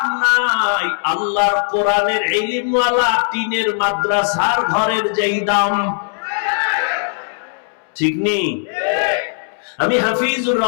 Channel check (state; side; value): silent; right; 67 dB below the other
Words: নাই আল্লাহর কোরআনের ইলমওয়ালা টিনের মাদ্রাসার ঘরের যেই দাম। ঠিক নেই? আমি হাফিজুর